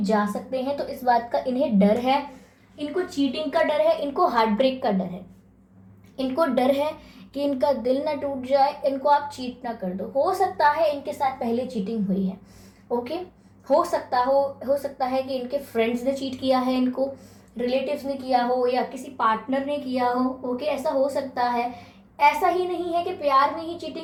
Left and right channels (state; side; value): identical; both; correlation 1.00